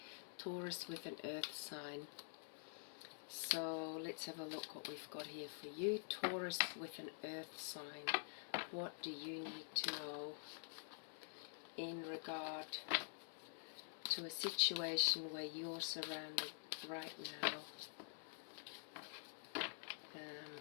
Taurus with an earth sign. So let's have a look what we've got here for you. Taurus with an earth sign. What do you need to know in regard to a situation where you're surrounded right now?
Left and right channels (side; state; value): right; silent; digital silence